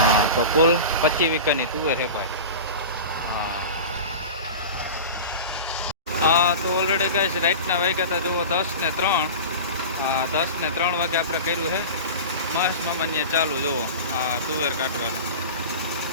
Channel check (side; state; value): both; inverted; correlation -0.30